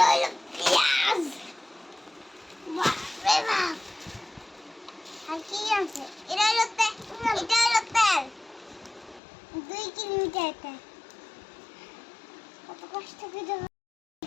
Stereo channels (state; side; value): drops out; right; at 9.2 s